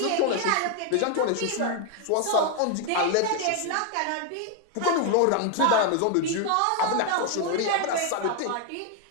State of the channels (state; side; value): different; both; correlation 0.01